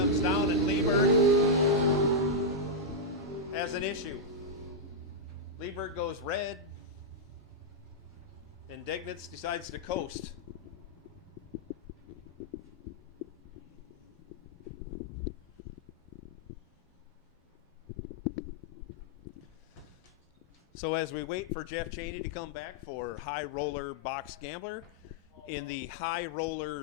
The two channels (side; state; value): both; normal; correlation -0.05